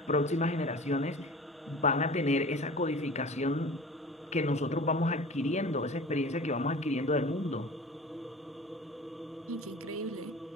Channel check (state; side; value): normal; both; correlation 0.39